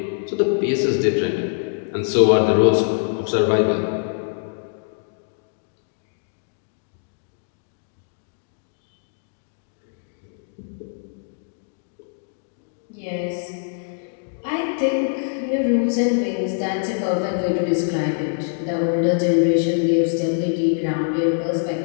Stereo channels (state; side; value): silent; right; digital silence